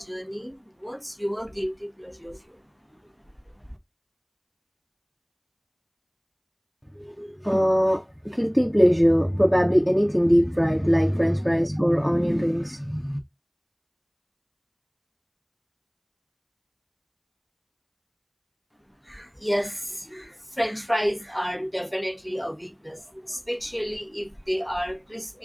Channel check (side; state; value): both; identical; correlation 1.00